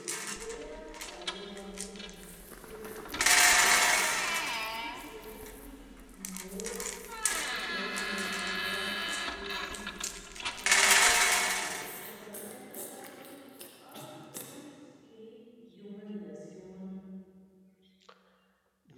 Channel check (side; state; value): both; identical; correlation 1.00